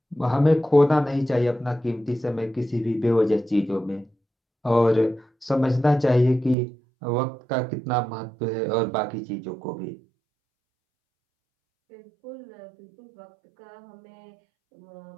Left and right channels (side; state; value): left; drops out; at 6.6 s